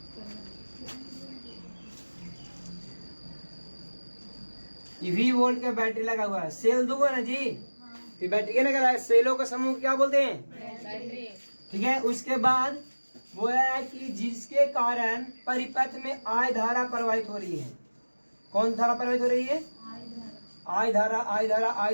ये V वोल्ट का बैटरी लगा हुआ है, सेल दूंगा ना जी, फिर बैटरी क्या लगा है, सेलों का समूह क्या बोलते हैं, ठीक है। उसके बाद वो है कि जिसके कारण परिपथ में I धारा प्रवाहित हो रही है। कौन धारा प्रवाहित हो रही है? I धारा, I धारा,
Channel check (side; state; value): both; inverted; correlation -1.00